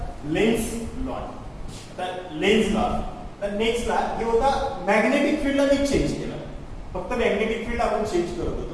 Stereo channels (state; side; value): identical; both; correlation 1.00